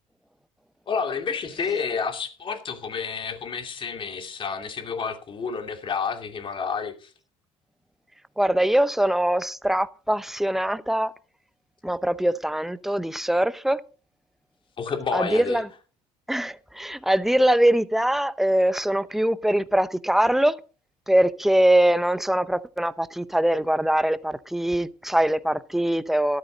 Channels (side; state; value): both; normal; correlation 0.92